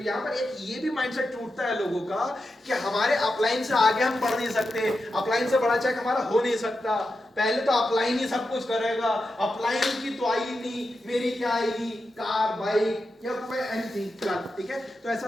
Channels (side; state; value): both; normal; correlation 0.89